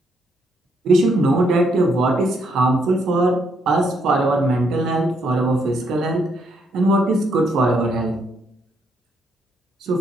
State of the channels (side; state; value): both; normal; correlation 0.74